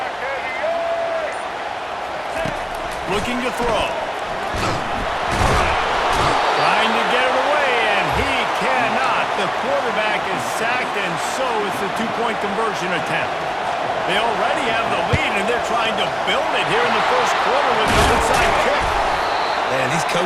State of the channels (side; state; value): both; identical; correlation 1.00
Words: Looking to throw. Trying to get it away, and he cannot. The quarterback is sacked, and so is the 2-point conversion attempt. They already have the lead, and they're trying to build it here in the first quarter with an onside kick. Man, these